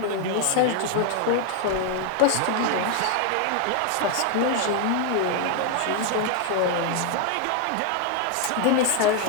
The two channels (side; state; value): both; different; correlation 0.00